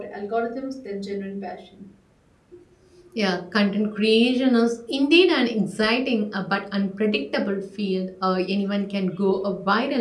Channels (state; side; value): identical; both; correlation 1.00